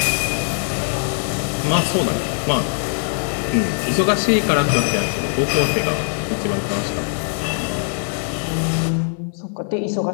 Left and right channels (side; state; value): right; silent; 60 dB below the other